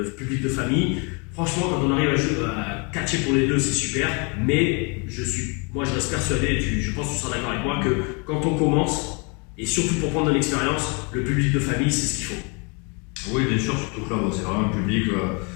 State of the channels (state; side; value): quieter; right; 32.7 dB